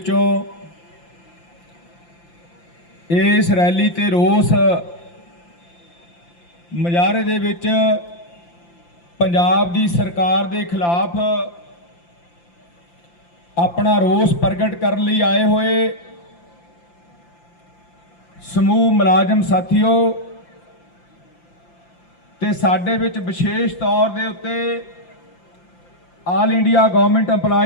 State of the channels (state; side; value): late; right; 5.8 ms